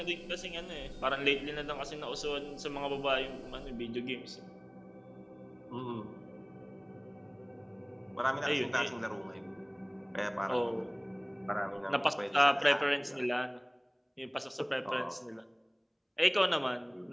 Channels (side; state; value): both; identical; correlation 1.00